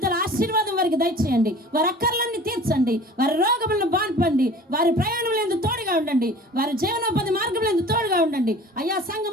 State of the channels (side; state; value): both; normal; correlation 0.44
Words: ఆశీర్వాదం వారికి దయచేయండి. వారి అక్కర్లన్నీ తీర్చండి. వారి రోగములను బాన్పండి. వారి ప్రయాణంలో తోడుగా ఉండండి. వారి జీవనోపాధి మార్గంలో తోడుగా ఉండండి. అయ్యా